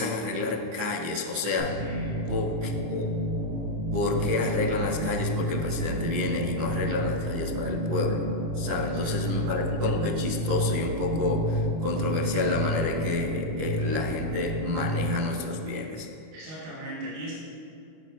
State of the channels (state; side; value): late; left; 25 ms